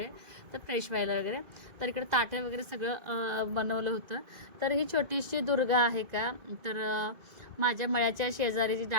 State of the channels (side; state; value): left; late; 2.0 ms